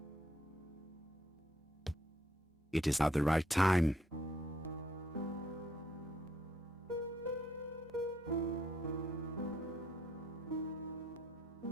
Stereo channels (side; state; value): both; normal; correlation 0.70